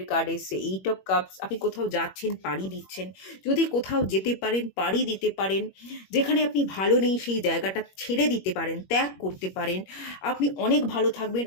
কার্ড এসছে এইট অফ কাপস। আপনি কোথাও যাচ্ছেন, পাড়ি দিচ্ছেন। যদি কোথাও যেতে পারেন, পাড়ি দিতে পারেন, যেখানে আপনি ভালো নেই সেই জায়গাটা ছেড়ে দিতে পারেন, ত্যাগ করতে পারেন, আপনি অনেক ভালো থাকবেন,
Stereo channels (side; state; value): right; late; 21 ms